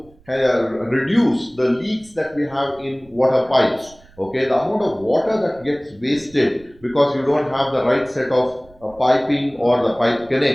reduce the leaks that we have in water pipes. Okay, the amount of water that gets wasted because you don't have the right set of piping or the pipe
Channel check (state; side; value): noise; right; rumble, 28 dB below the sound